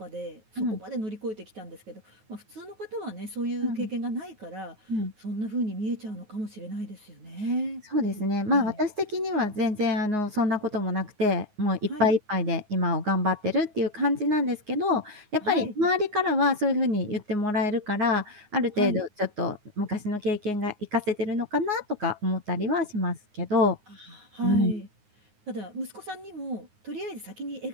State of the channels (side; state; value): left; late; 9.5 ms